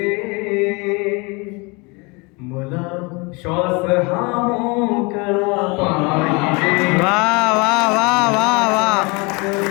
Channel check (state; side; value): quieter; right; 28.3 dB